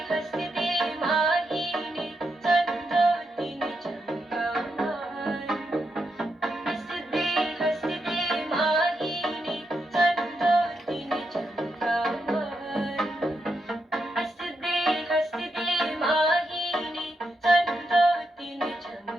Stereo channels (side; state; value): both; normal; correlation 0.83